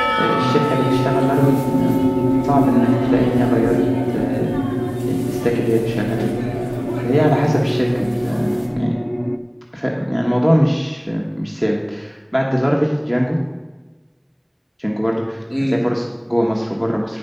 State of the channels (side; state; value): both; identical; correlation 1.00